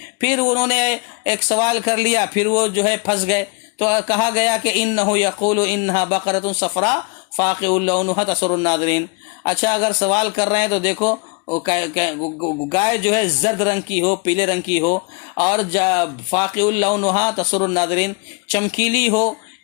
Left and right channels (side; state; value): right; quieter; 31.7 dB